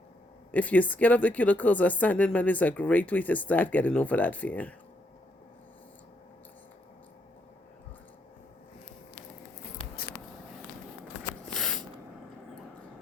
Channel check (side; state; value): both; normal; correlation 0.76